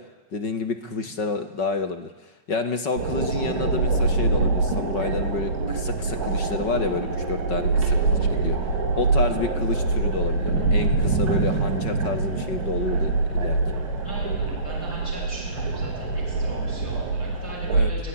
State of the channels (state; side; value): late; right; 5.3 ms